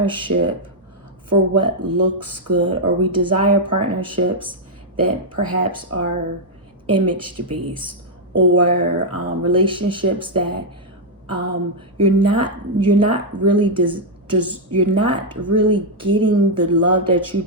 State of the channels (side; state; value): both; normal; correlation -0.03